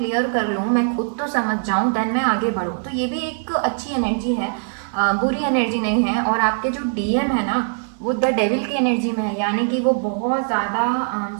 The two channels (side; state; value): left; silent; digital silence